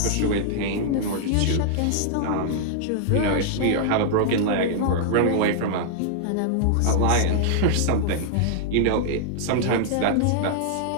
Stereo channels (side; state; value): both; different; correlation -0.01